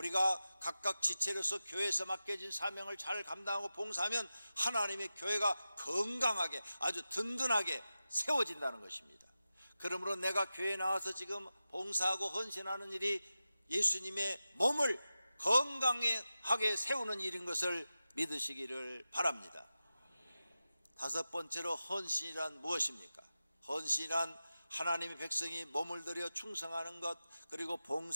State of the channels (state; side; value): inverted; both; correlation -0.93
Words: 각각 지체로서 교회에서 맡겨진 사명을 잘 감당하고 봉사하면 하나님의 교회가 건강하게 아주 든든하게 세워진다는 것입니다. 그러므로 내가 교회에 나와서 지금 봉사하고 헌신하는 일이 예수님의 몸을 건강하게 세우는 일인 것을 믿으시기를 바랍니다. 다섯 번째로 헌신이란 무엇입니까? 헌신이란 하나님의 백성이 몸을 들여 충성하는 것, 그리고